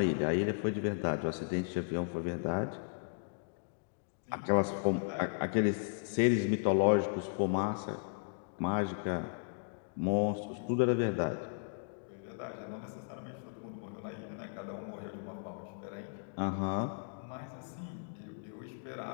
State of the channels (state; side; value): silent; right; digital silence